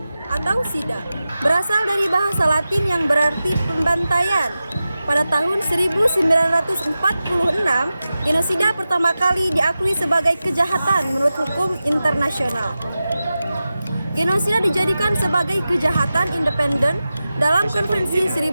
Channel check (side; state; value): both; inverted; correlation -0.94